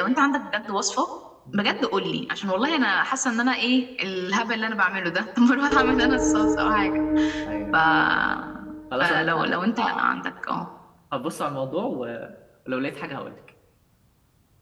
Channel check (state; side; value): identical; both; correlation 1.00